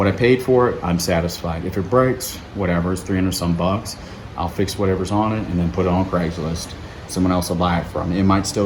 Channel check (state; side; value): identical; both; correlation 1.00